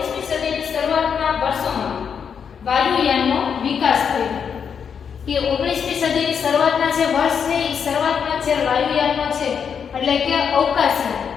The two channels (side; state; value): right; quieter; 7.0 dB